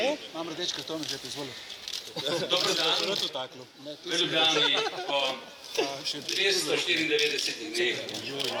je? Imam rdeč karton, že ti izvolil. Dobro dan. V Ljubljani po 294 dneh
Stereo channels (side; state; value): both; identical; correlation 1.00